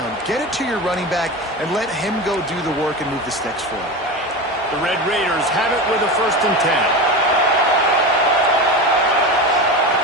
Get it to your running back and let him go do the work and move the sticks for it. The Red Raiders have it with a 1st and 10.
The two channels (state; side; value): normal; both; correlation 0.24